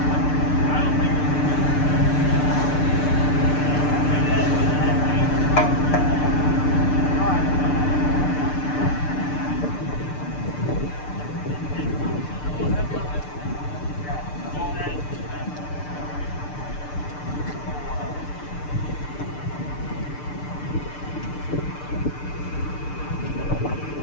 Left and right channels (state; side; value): late; right; 6.7 ms